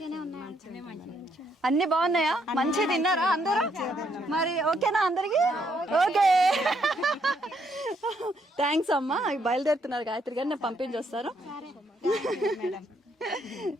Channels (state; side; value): normal; both; correlation 0.73